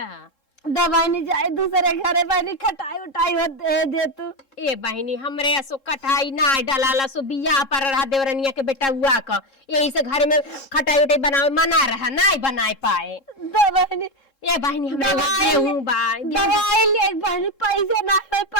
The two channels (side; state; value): right; late; 3.7 ms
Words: दवाई नहीं जाए दूसरे घरे बहनी खटाई उठाई दे तू। ए बहनी हमरे सो कटाई ना डाला सो बिया पर रहा देवरनिया के बेटा हुआ का यही से घर में खटाई उठाई बनावे मना रहा ना बनाए पाए। दवाई ए बहनी हमरे गेहूं बा दवाई ले बहनी पैसे ना हो